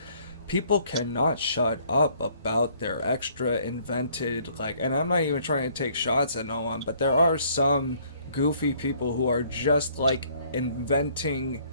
people cannot shut up about their extra invented, like, and I'm not even trying to take shots at no one, but there are some goofy people who are just like inventing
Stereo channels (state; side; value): inverted; both; correlation -0.62